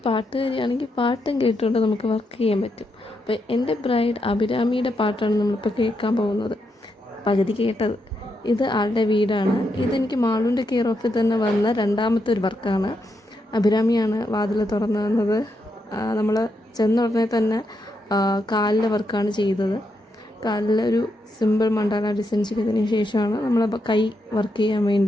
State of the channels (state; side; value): normal; both; correlation 0.82